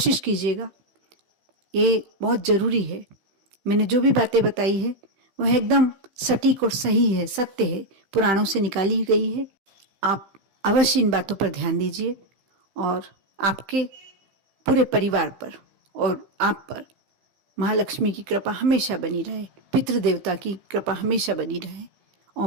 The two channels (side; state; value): left; late; 15 ms